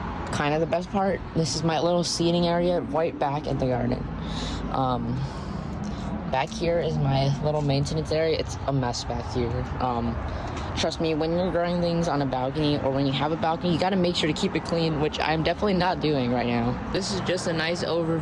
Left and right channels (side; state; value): both; identical; correlation 1.00